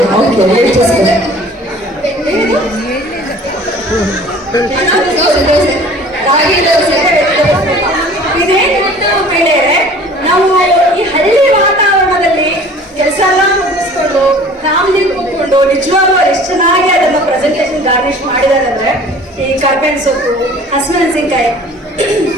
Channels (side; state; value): both; normal; correlation 0.47